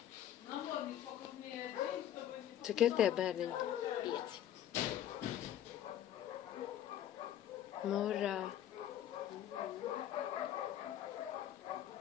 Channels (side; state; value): right; quieter; 11.2 dB